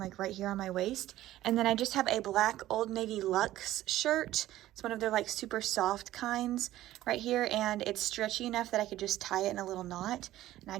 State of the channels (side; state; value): left; quieter; 14.6 dB